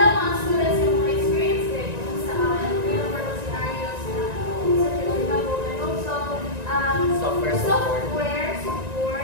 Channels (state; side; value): late; left; 1.9 ms